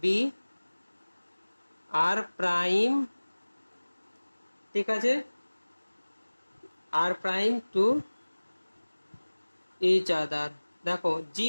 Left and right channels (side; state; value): both; inverted; correlation -1.00